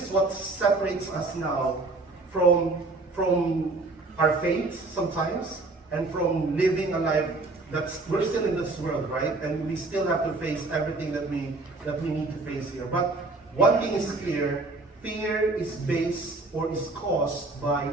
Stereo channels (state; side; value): quieter; left; 3.4 dB